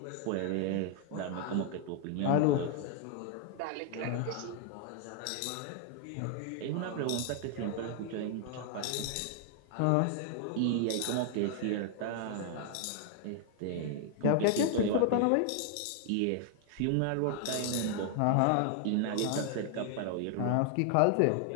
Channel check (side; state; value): both; different; correlation 0.00